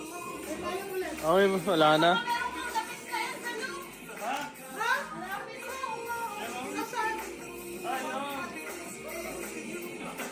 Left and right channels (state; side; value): identical; both; correlation 1.00